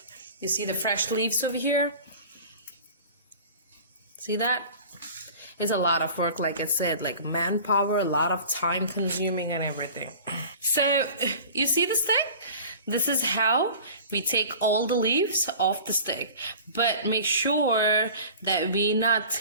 You see the fresh leaves over here? See that? It's a lot of work, like I said, like manpower, a lot of time consuming and everything. So you see the stick? This is how we take all the leaves off the stick, but make sure that we're not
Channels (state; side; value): inverted; both; correlation -0.41